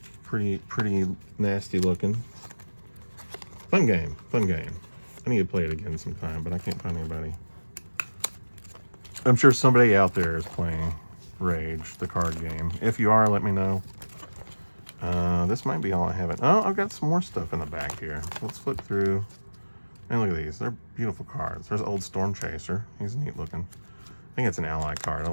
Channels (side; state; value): both; inverted; correlation -1.00